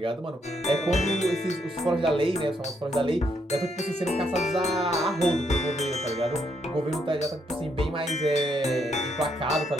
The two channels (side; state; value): both; normal; correlation 0.75